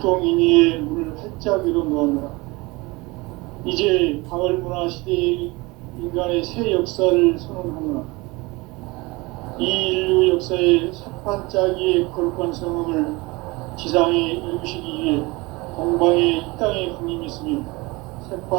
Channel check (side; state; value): left; quieter; 23.9 dB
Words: 문을 활짝 열어 놓았노라. 이제 가을 문화 시대의 인간의 새 역사를 선언하노라. 이 인류 역사의 첫 반짝이의 거룩한 성음을 지상에 이루시기 위해 동방에 이 땅에 군림이 있으며